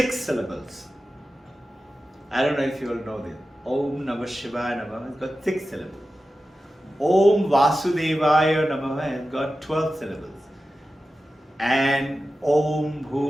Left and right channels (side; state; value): both; normal; correlation 0.93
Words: syllables. I don't know if you all know this. Om Namah Shivaya Namaha has got 6 syllables. Om Vasudevaya Namaha has got 12 syllables. And Om